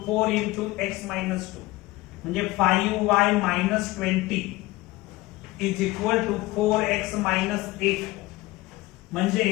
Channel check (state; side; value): quieter; right; 19.7 dB